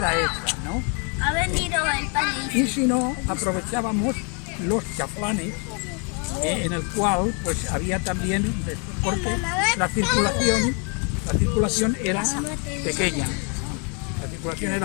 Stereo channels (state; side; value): quieter; right; 36.6 dB